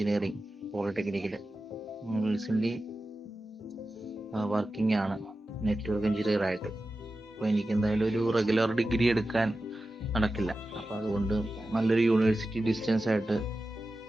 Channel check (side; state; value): both; normal; correlation 0.93